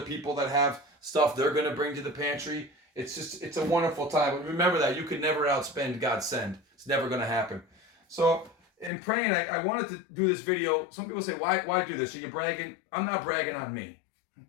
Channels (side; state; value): right; drops out; at 8.9 s